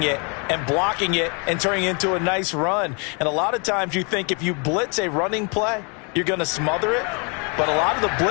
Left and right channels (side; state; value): right; quieter; 34.6 dB